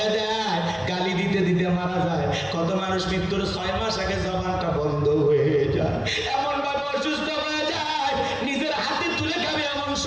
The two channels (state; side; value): noise; right; rumble, 30 dB below the sound